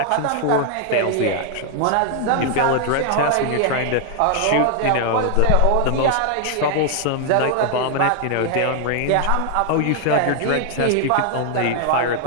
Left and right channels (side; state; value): both; different; correlation 0.00